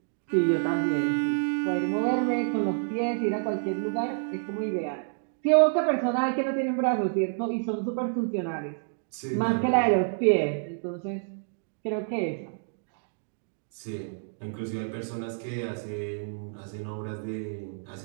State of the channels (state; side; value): silent; left; digital silence